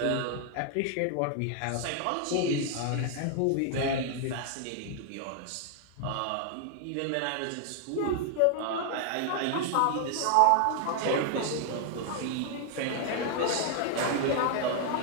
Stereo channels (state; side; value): different; both; correlation 0.00